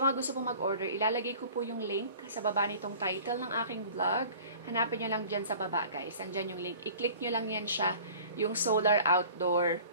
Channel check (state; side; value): inverted; both; correlation -0.46